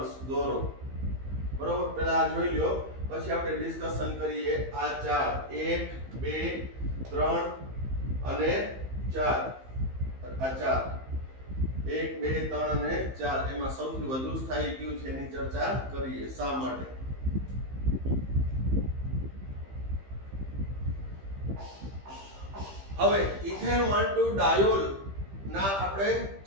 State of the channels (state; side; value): late; left; 15 ms